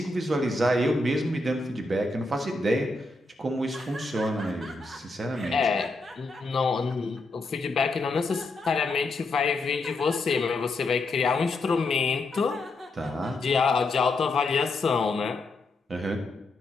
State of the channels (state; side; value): quieter; right; 3.0 dB